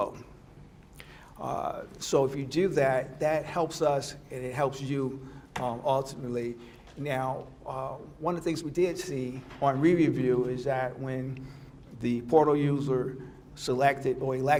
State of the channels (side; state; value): both; identical; correlation 1.00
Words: So if you do that, that helps us and it helps you ultimately. Now, one of the things we did see on re-review is that when the portal user selected or